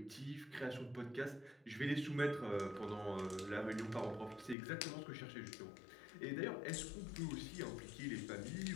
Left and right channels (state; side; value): drops out; right; at 4.5 s